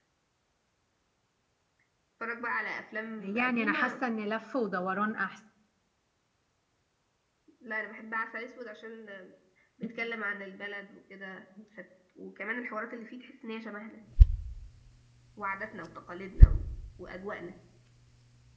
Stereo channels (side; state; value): both; identical; correlation 1.00